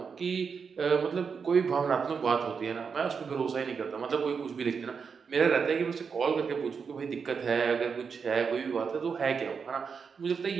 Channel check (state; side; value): quieter; left; 5.9 dB